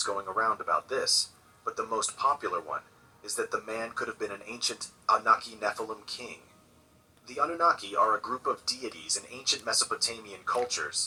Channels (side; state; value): both; identical; correlation 1.00